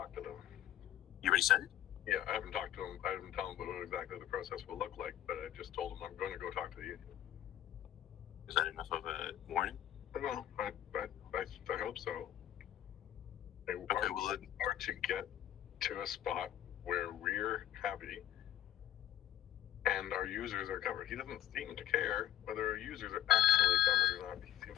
to them. You already said it? Yeah, I haven't talked to them. I haven't told them what exactly the process will look like, but I just told them I'm going to go talk to the union. Is that enough of a warning? No, I hope so. Or to get to a spot where we're happy and our users are covered. He doesn't seem to care whether our users are actually covered or not. He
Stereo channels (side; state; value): right; quieter; 12.2 dB